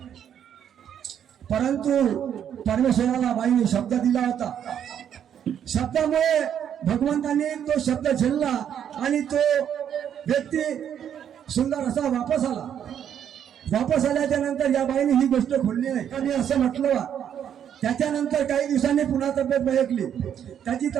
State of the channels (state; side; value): quieter; left; 9.2 dB